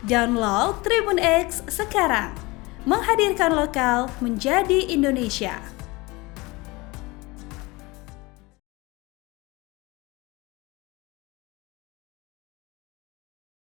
Download Tribun X sekarang. Menghadirkan lokal menjadi Indonesia.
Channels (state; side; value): quieter; right; 23.5 dB